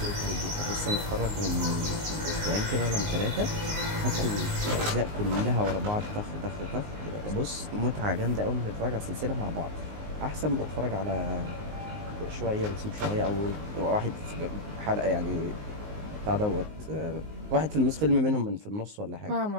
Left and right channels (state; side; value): late; left; 19 ms